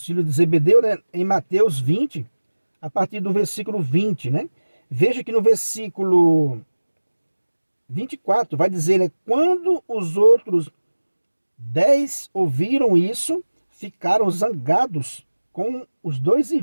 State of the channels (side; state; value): both; inverted; correlation -1.00